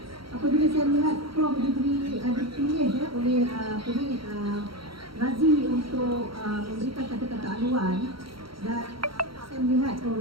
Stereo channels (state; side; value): late; left; 0.74 ms